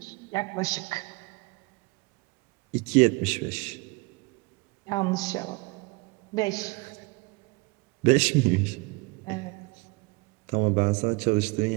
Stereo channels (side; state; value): left; quieter; 26.1 dB